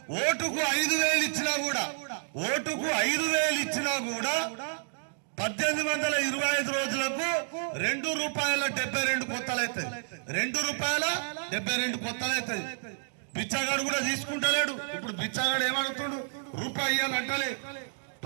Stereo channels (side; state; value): left; silent; digital silence